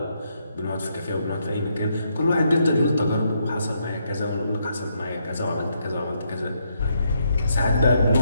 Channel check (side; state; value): both; inverted; correlation -0.76